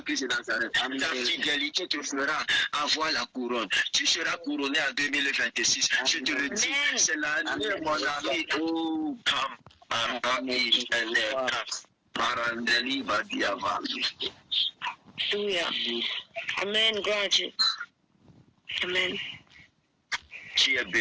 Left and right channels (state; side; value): identical; both; correlation 1.00